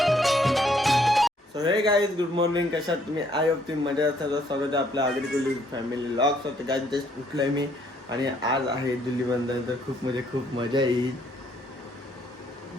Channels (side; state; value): both; normal; correlation 0.67